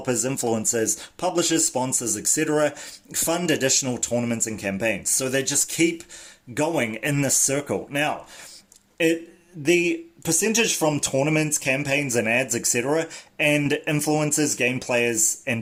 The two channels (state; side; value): identical; both; correlation 1.00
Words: influencers, publishers, sponsors, etc. fund additional tournaments and campaigns. So they just keep going in this circle. Now, the percentage from tournaments, campaigns, and ads, etc., and influencers, game players,